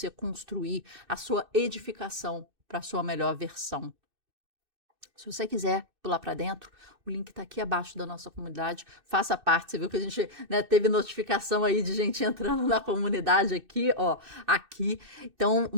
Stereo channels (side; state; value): left; late; 2.6 ms